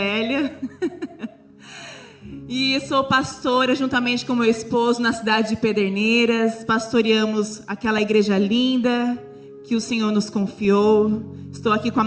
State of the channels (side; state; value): both; identical; correlation 1.00